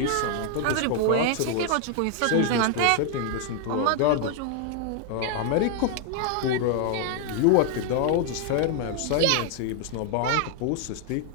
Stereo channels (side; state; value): both; different; correlation 0.00